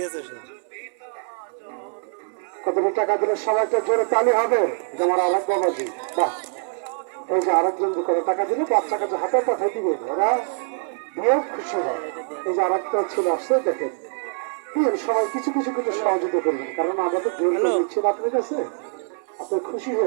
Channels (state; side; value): silent; left; 57 dB below the other